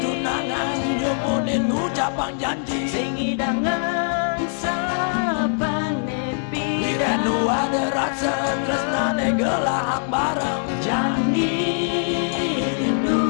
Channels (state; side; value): silent; right; 57 dB below the other